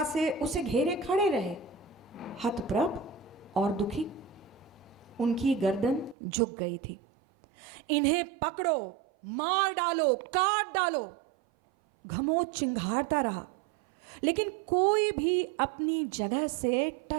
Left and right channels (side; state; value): left; drops out; at 6.2 s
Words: से उसे घेरे खड़े रहे, हतप्रभ और दुखी। उनकी गर्दन झुक गई थी। इन्हें पकड़ो, मार डालो, काट डालो, घमोच चिंघाड़ता रहा, लेकिन कोई भी अपनी जगह से